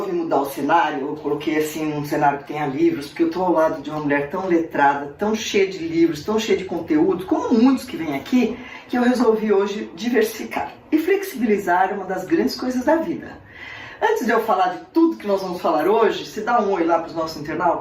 mudar o cenário, eu coloquei assim um cenário que tenha livros, porque eu tô ao lado de uma mulher tão letrada, tão cheia de livros, tão cheia de conteúdo, como muitos que vêm aqui, que eu resolvi hoje diversificar. E flexibilizar é uma das grandes coisas da vida. Antes de eu falar de tudo que nós vamos falar hoje, se dá um oi lá para os nossos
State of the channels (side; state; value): both; identical; correlation 1.00